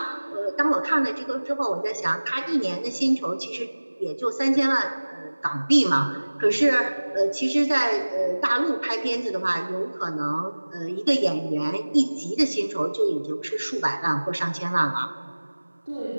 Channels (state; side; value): inverted; both; correlation -1.00